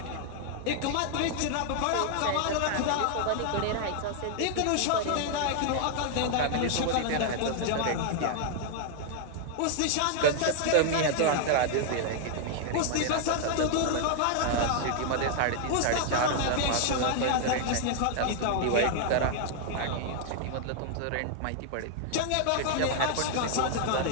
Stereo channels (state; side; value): different; both; correlation 0.00